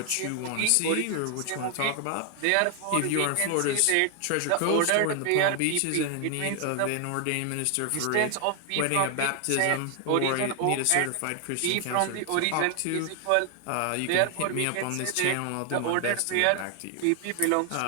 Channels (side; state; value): both; different; correlation 0.00